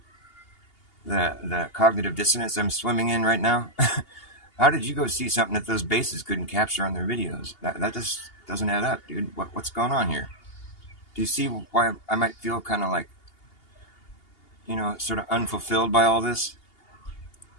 cognitive dissonance I'm swimming in right now? How did you go see something that those bases couldn't capture on their videos? That just doesn't add up, dude. What's going on here? Do you see why I might feel kind of like, sort of unfulfilled by all this?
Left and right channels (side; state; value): right; late; 2.8 ms